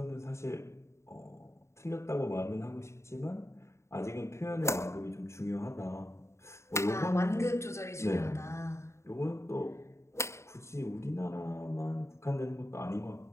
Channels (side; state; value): right; late; 0.13 ms